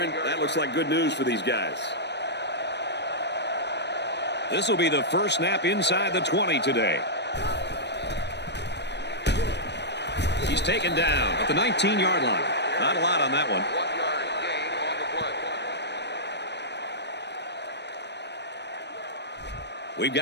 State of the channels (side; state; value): right; late; 0.50 ms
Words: That looks like good news for these guys. This will be the first snap inside the 20 today. He's taken down at the 19-yard line. Not a lot on that one. We've